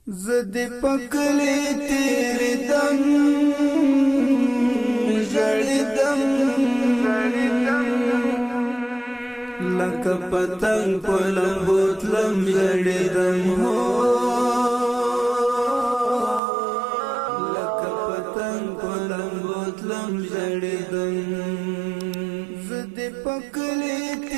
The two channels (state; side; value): drops out; left; at 16.4 s